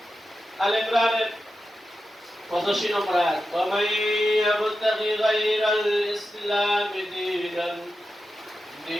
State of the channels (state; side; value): normal; both; correlation 0.91